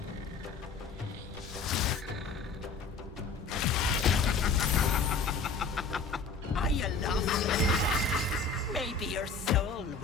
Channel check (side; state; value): right; quieter; 4.4 dB